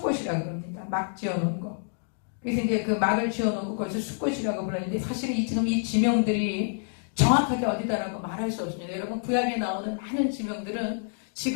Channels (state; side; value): silent; right; digital silence